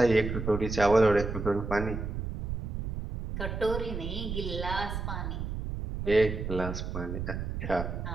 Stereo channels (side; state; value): right; noise; rumble, 5 dB below the sound